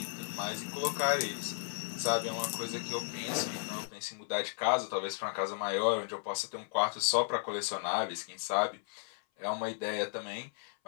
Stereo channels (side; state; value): right; silent; 55 dB below the other